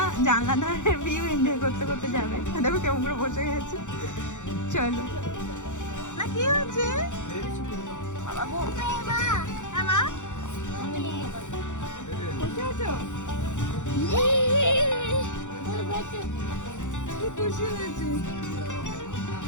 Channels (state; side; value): late; right; 0.85 ms